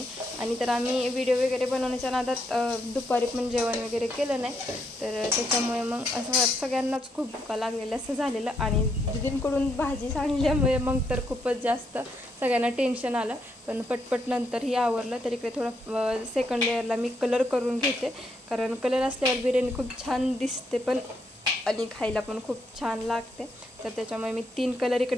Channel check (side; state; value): both; normal; correlation 0.77